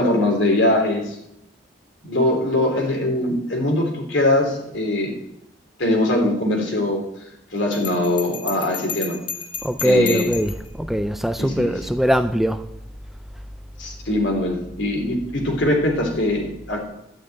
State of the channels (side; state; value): both; normal; correlation 0.42